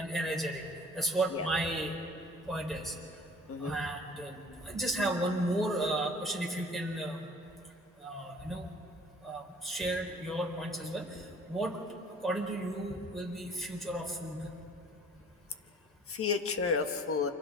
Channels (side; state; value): both; normal; correlation 0.51